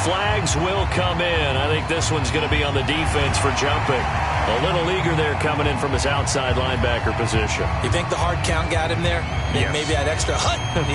flags will come in. I think this one's going to be on the defense for jumping. A little eager there coming in from his outside linebacker position. You think the hard count got him there? Yes. Maybe that extra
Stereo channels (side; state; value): both; identical; correlation 1.00